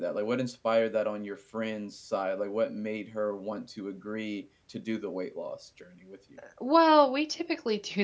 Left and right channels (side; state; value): both; identical; correlation 1.00